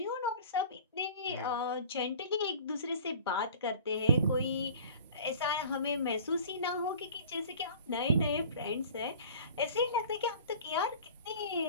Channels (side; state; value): both; inverted; correlation -0.43